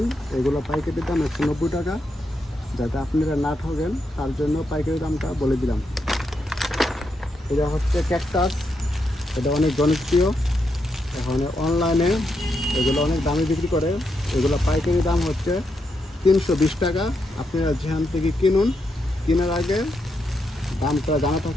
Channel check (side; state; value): both; normal; correlation 0.82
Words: এগুলো পাইকারি দাম 190 টাকা। যাতে আপনারা না ঠকেন তার জন্য পাইকারি দামটা বলে দিলাম। এটা হচ্ছে ক্যাকটাস। এটা অনেক জনপ্রিয়। এখন অনলাইনে এগুলো অনেক দামে বিক্রি করে। এগুলো পাইকারি দাম হচ্ছে 320 টাকা। আপনারা যেখান থেকে কিনুন, কেনার আগে দামটা জানা